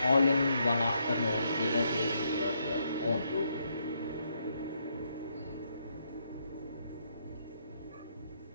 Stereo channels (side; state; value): both; inverted; correlation -0.76